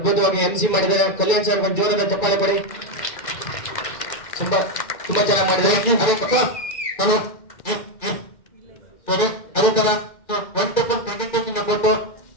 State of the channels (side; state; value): right; late; 2.1 ms